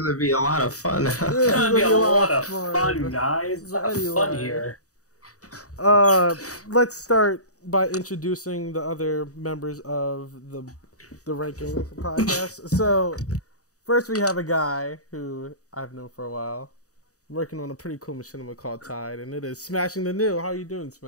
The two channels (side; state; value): right; late; 0.66 ms